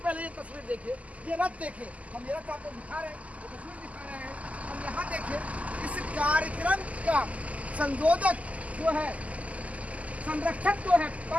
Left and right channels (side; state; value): left; late; 0.070 ms